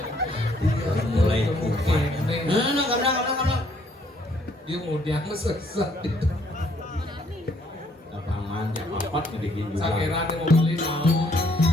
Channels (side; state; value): both; normal; correlation 0.67